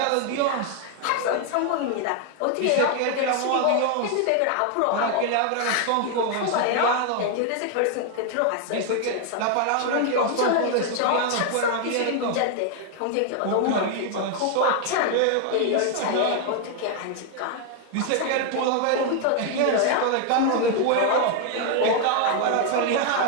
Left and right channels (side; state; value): both; different; correlation 0.00